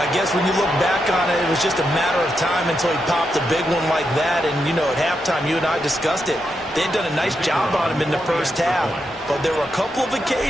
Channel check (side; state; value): both; normal; correlation 0.84